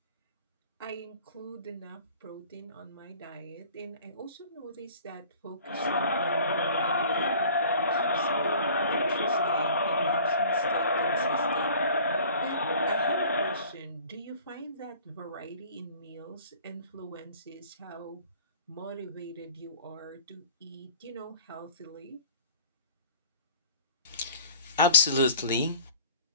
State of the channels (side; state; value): both; inverted; correlation -0.48